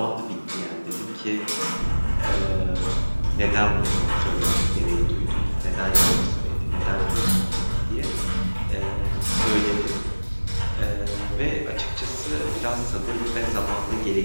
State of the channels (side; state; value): both; inverted; correlation -1.00